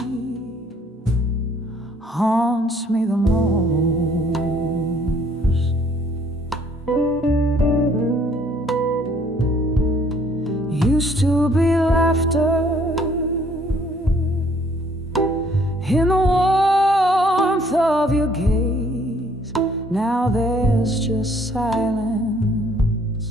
haunts me the most. Used to be laughter in the warmth of your gaze. Now there's just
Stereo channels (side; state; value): both; normal; correlation 0.62